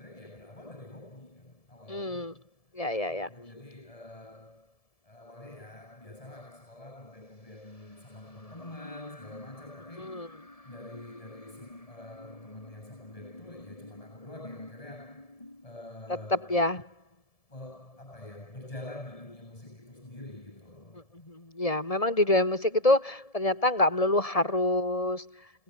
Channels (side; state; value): right; late; 1.7 ms